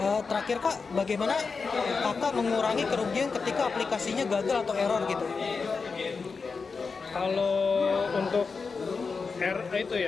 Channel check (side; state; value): right; quieter; 4.8 dB